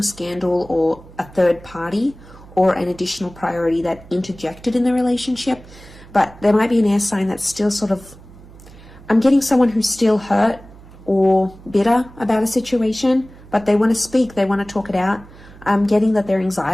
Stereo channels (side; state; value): right; noise; hum, 20 dB below the sound